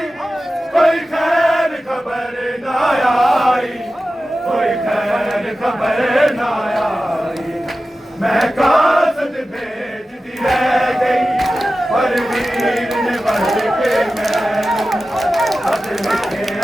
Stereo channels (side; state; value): both; normal; correlation 0.94